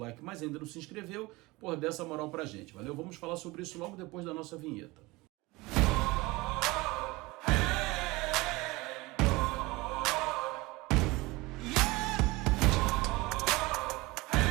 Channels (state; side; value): quieter; left; 22.3 dB